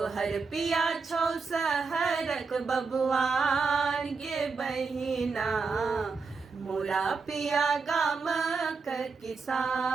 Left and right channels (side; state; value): left; quieter; 4.8 dB